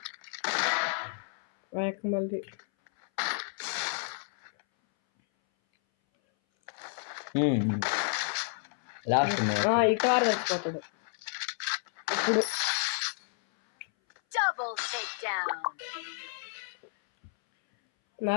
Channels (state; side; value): silent; right; 57 dB below the other